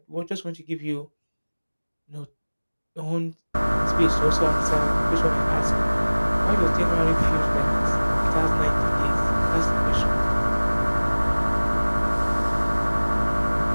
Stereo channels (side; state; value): both; inverted; correlation -1.00